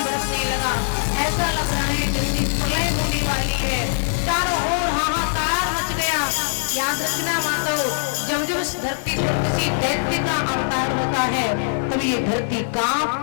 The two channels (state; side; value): silent; right; digital silence